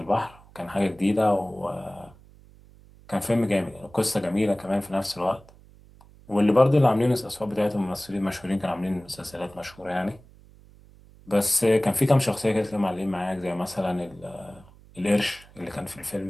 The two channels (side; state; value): right; noise; hum, 24 dB below the sound